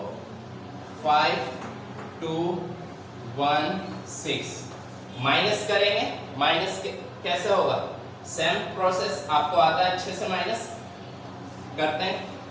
माइनस करेंगे। माइनस कैसे होगा, सेम प्रोसेस आपको आता है अच्छे से, माइनस करते हैं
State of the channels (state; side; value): identical; both; correlation 1.00